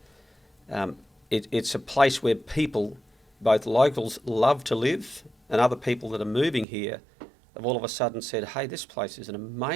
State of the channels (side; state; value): left; drops out; at 6.7 s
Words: It's a place where people, both locals, love to live, and other people that are moving here have all of a sudden said, hey, this place is an